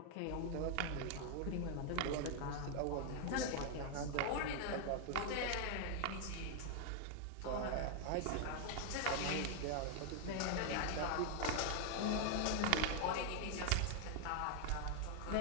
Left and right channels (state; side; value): different; both; correlation 0.00